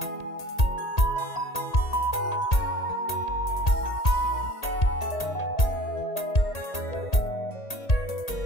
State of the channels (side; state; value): right; late; 1.8 ms